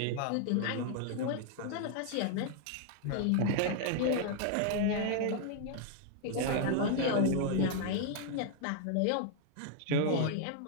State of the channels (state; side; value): different; both; correlation 0.00